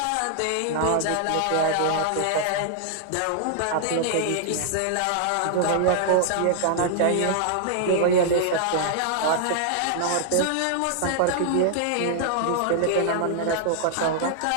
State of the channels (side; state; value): both; different; correlation -0.01